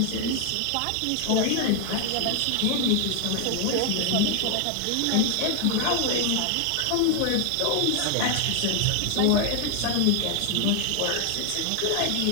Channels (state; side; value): different; both; correlation 0.00